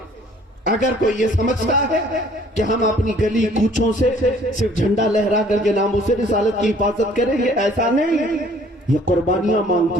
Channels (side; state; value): both; normal; correlation 0.56